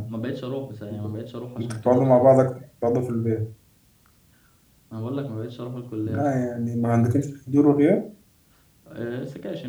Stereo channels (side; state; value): both; identical; correlation 1.00